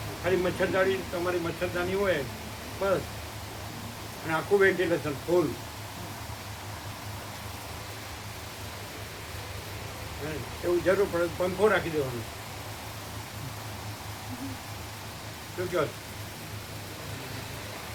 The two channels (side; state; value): both; identical; correlation 1.00